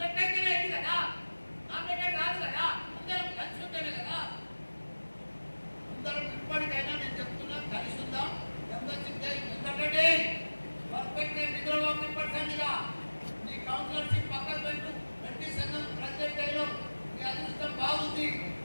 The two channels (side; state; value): both; inverted; correlation -1.00